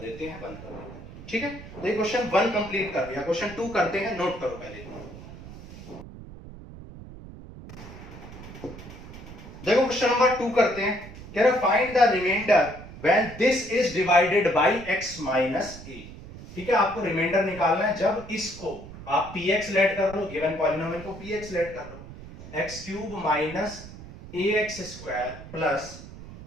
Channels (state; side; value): noise; right; rumble, 15 dB below the sound